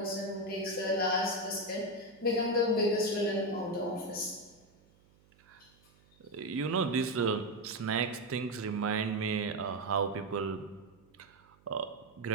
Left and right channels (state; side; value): noise; right; hum, 30 dB below the sound